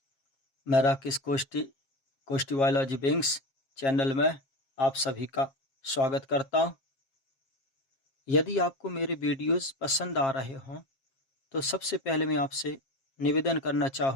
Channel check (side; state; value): right; late; 7.4 ms